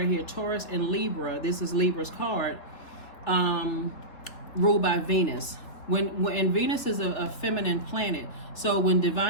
here, Taurus and Libra. This is Libra's card, ruled by Venus. When Venus is a feminine planet, so when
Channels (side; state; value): right; late; 3.7 ms